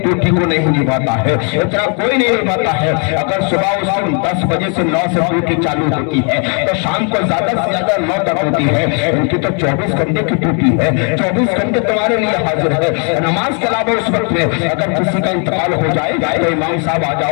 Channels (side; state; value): right; quieter; 39.1 dB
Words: को नहीं निभाता है, इतना कोई नहीं निभाता है। अगर सुबह उसकी 10 बजे से 9 से ड्यूटी चालू होती है तो शाम को ज्यादा से ज्यादा 9 तक होती है। उनकी तो 24 घंटे की ड्यूटी है, 24 घंटे तुम्हारे लिए हाजिर है। नमाज के अलावा उस वक्त में अगर किसी का इंतकाल हो जाए तो इमाम साहब आ